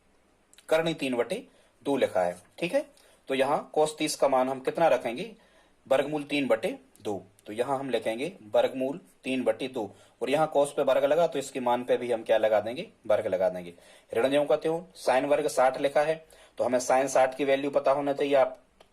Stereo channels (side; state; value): both; identical; correlation 1.00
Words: करणी 3/2 लिखा है, ठीक है। तो यहाँ cos 30 का मान हम कितना रखेंगे, वर्गमूल 3/2। तो यहाँ हम लिखेंगे वर्गमूल 3/2, और यहाँ cos पे वर्ग लगा तो इसके मान पे भी हम क्या लगा देंगे, वर्ग लगा देंगे। ऋण ज्यों का त्यों, साइन वर्ग 60 लिखा है, तो हमें साइन 60 की वैल्यू पता होना चाहिए। आप